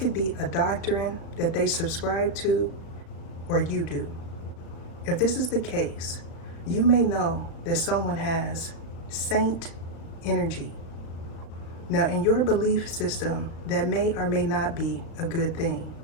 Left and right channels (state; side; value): late; right; 36 ms